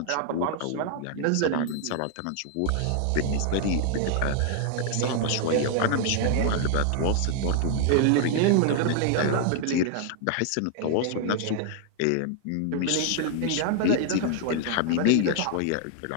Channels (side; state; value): both; different; correlation 0.00